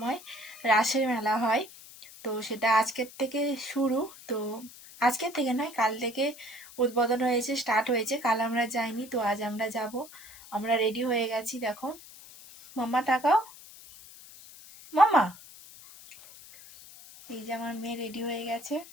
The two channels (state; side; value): noise; left; hiss, 19 dB below the sound